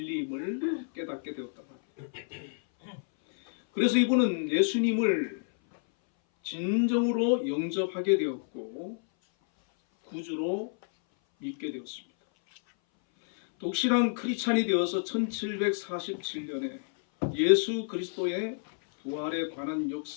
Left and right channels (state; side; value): silent; right; 58 dB below the other